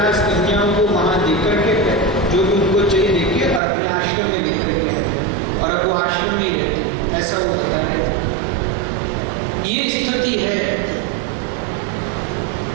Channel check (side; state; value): left; drops out; at 3.6 s